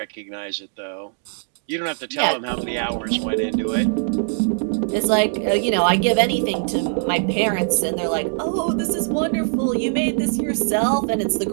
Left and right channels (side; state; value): left; silent; digital silence